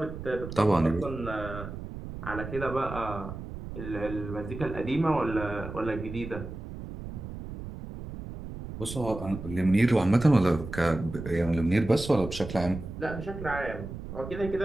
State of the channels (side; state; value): right; noise; rumble, 10 dB below the sound